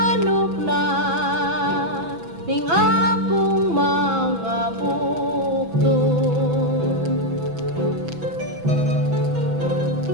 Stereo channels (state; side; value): late; left; 6.1 ms